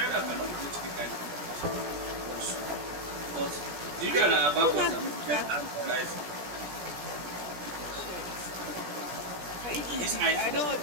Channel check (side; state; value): left; late; 17 ms